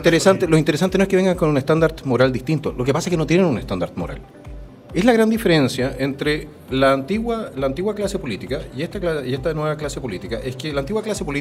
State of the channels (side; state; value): both; identical; correlation 1.00